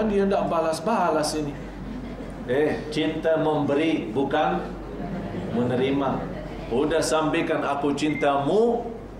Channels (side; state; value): both; identical; correlation 1.00